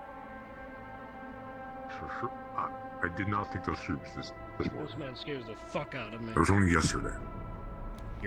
Sure. I did not think those troops this This man scares the fuck out of me. It was only yesterday.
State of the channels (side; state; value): both; identical; correlation 1.00